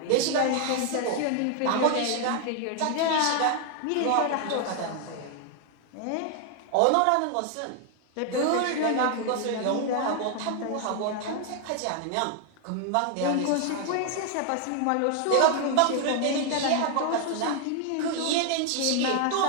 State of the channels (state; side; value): different; both; correlation 0.00